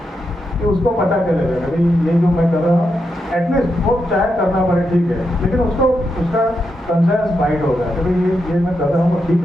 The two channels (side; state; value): both; normal; correlation 0.84